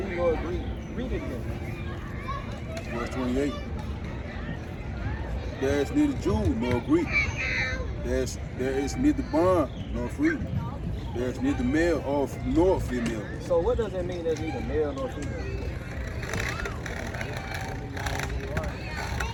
nor Greek. Read it again. Verse 28. There is neither Jew nor Greek. There is neither bond nor free. There is neither male nor female. So what does it mean there's neither male nor female?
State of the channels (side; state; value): both; identical; correlation 1.00